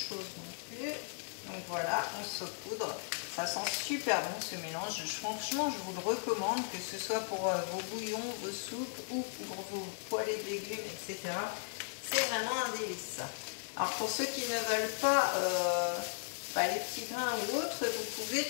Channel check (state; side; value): silent; right; digital silence